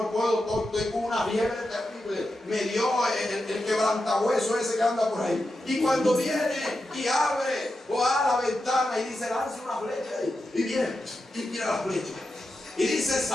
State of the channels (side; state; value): both; normal; correlation 0.89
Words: puedo, estoy con una fiebre terrible. Me dio el quebrantahueso ese que anda por ahí. Y cuando viene y abre la ventana y dice: lance una flecha ahí. Y viene y tira la flecha. Y dice: